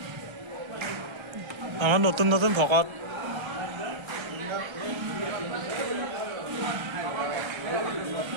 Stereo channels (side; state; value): left; late; 1.3 ms